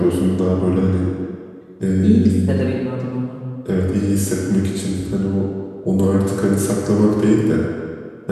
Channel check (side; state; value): both; identical; correlation 1.00